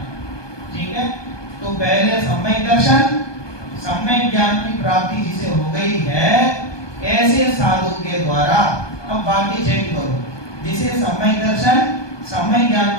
ठीक है, तो पहले सम्यक दर्शन, सम्यक ज्ञान की प्राप्ति जिसे हो गई है, ऐसे साधु के द्वारा, अब बाकी चेक करो, जिसे सम्यक दर्शन सम्यक ज्ञान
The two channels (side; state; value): right; late; 1.2 ms